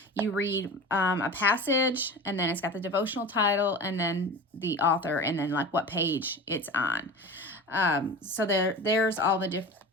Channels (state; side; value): normal; both; correlation 0.33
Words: You read a passage, and then it's got the devotional title, and then the author, and then like what page it's on. So there's all the different,